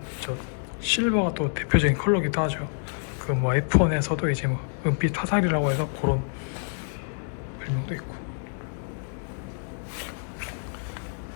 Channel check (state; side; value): silent; right; digital silence